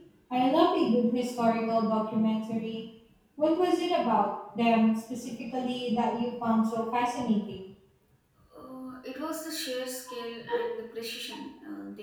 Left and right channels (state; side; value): identical; both; correlation 1.00